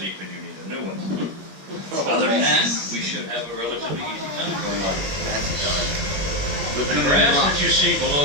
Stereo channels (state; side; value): late; left; 21 ms